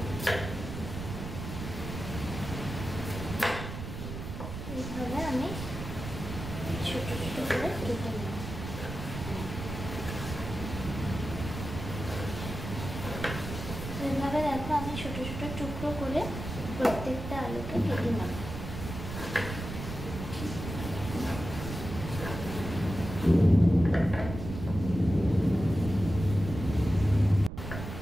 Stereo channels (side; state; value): right; noise; rumble, 7 dB below the sound